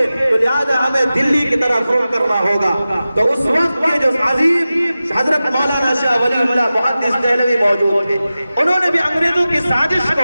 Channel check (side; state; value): both; inverted; correlation -0.95